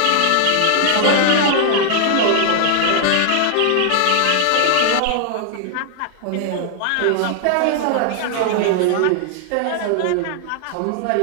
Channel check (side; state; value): both; different; correlation 0.00